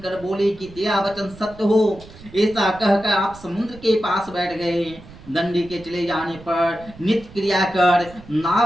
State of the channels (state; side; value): noise; right; rumble, 19 dB below the sound